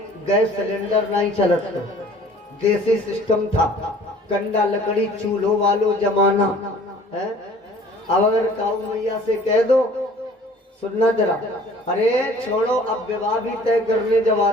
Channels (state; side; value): normal; both; correlation 0.51